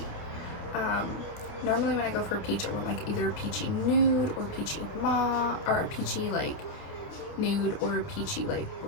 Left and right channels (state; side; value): late; right; 29 ms